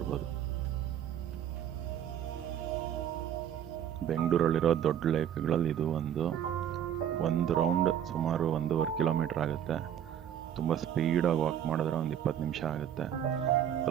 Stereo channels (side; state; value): left; quieter; 9.8 dB